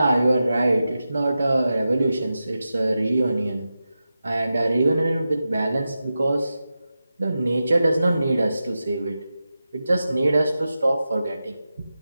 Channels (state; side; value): inverted; both; correlation -0.92